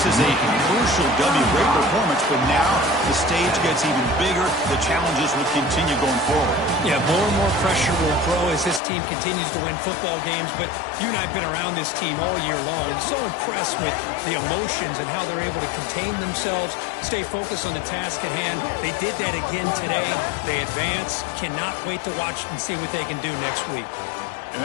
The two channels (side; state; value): right; drops out; at 8.8 s